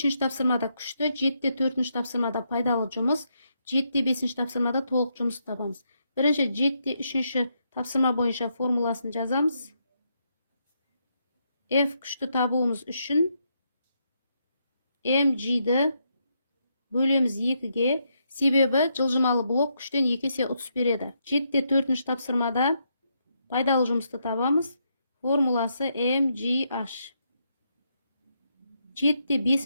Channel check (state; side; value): inverted; both; correlation -0.79